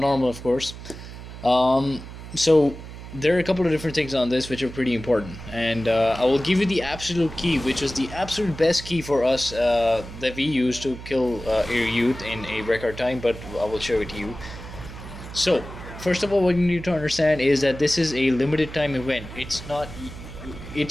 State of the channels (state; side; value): noise; right; hum, 13 dB below the sound